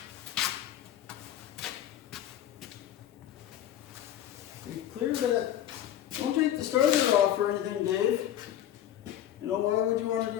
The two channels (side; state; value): right; quieter; 11.5 dB